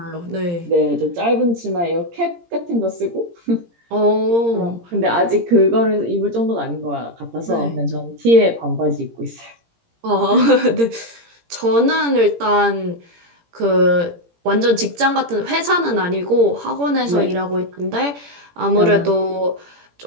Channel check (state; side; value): late; left; 17 ms